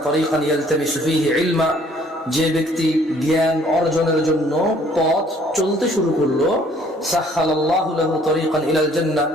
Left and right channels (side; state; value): both; normal; correlation 0.59